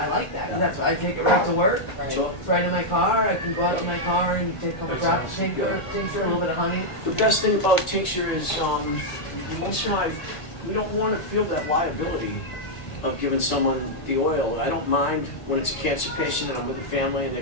like that. And that's why I take it right to work. Sure. It's right in my car. I can go out in my car and take a couple drops of tincture, a little bit of honey. The best thing about tincture is, most of the time, we don't want to feel that liability of giving someone the oil. I don't mind when it's a cancer patient and I'm with the family and they're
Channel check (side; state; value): right; late; 1.6 ms